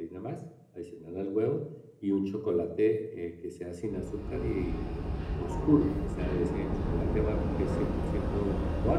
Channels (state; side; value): identical; both; correlation 1.00